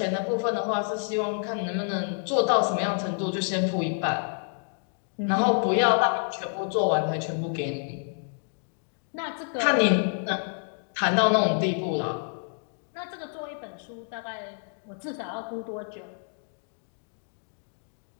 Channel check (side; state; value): right; silent; digital silence